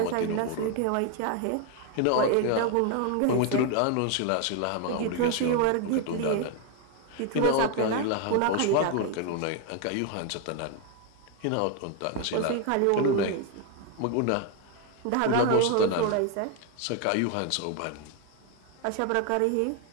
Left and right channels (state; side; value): different; both; correlation 0.01